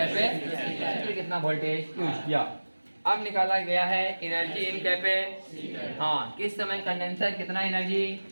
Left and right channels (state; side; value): inverted; both; correlation -1.00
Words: कितना वोल्टेज यूज किया। अब निकाला गया है एनर्जी इन कैपेसिटर। हाँ, किस समय कंडेंसर कितना एनर्जी